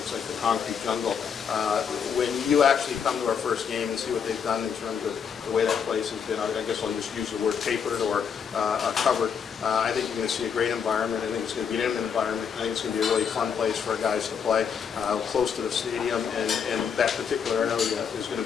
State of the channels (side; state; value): right; quieter; 7.0 dB